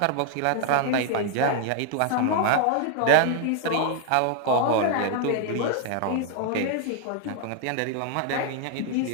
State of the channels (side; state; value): both; different; correlation 0.00